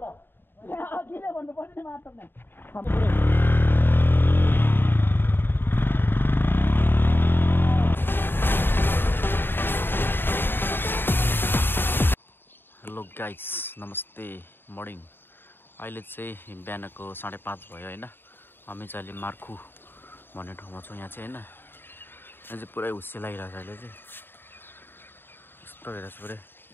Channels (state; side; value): late; right; 0.10 ms